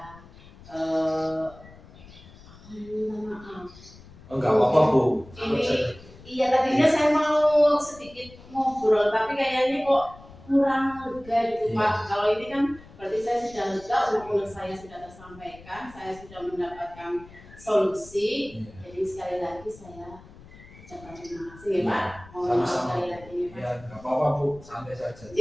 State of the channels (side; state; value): left; noise; rumble, 21 dB below the sound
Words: minta maaf. Enggak apa-apa Bu. Iya, tadinya saya mau sedikit ngobrol, tapi kayaknya kok kurang lega gitu, Iya. Pak. Kalau ini kan berarti saya sudah lega, unek-unek saya sudah tersampaikan, saya sudah mendapatkan solusi. Iya. Jadi sekali lagi saya ucapkan terima kasih ya, Pak. Mohon maaf Sama-sama. sekali lagi ya, Pak. Ya, enggak apa-apa Bu, santai saja.